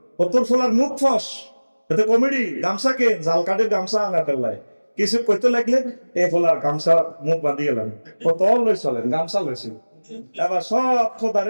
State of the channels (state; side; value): inverted; both; correlation -1.00